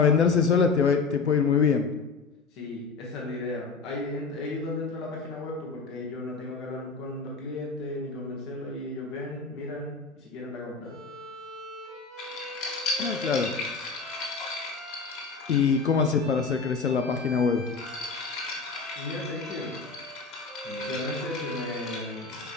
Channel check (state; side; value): quieter; right; 4.6 dB